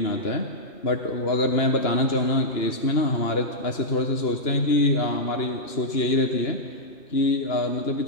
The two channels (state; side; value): late; right; 2.9 ms